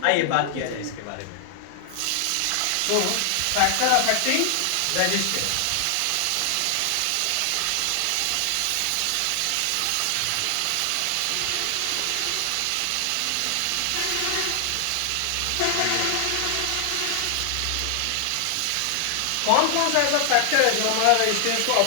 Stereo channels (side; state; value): both; different; correlation 0.00